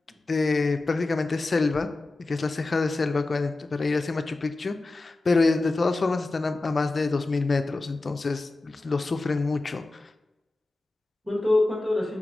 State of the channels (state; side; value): quieter; right; 3.1 dB